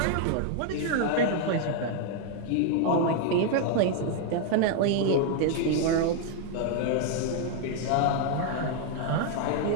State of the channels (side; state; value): both; different; correlation 0.00